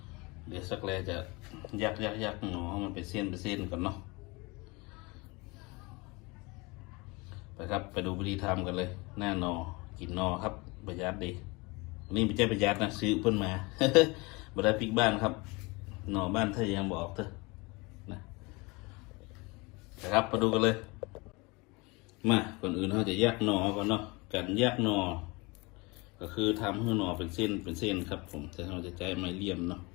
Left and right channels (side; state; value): right; quieter; 26.1 dB